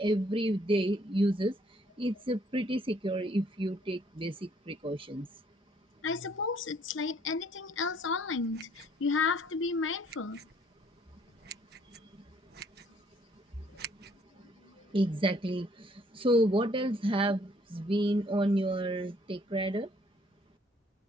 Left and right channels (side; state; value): both; normal; correlation 0.63